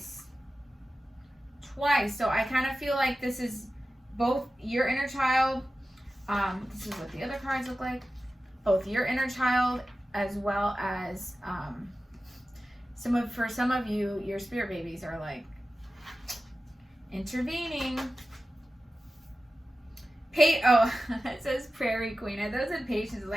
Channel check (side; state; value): both; normal; correlation 0.94